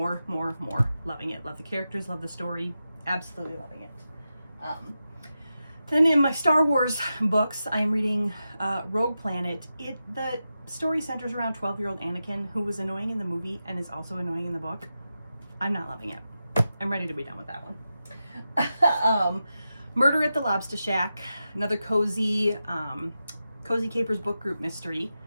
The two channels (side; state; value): both; inverted; correlation -0.90